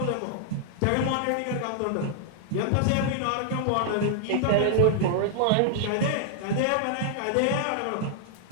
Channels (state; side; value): different; both; correlation -0.01